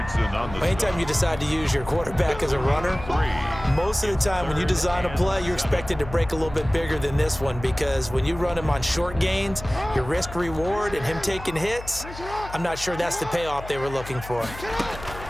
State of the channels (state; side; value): noise; left; hum, 13 dB below the sound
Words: on the Anytime you decide to use your quarterback as a runner, most of the time when you design a play, you're expected to break a little bit bigger than this one, because when you run him on short gains, your risk-reward and him taking hits, I'm not sure that's the payoff they were looking for.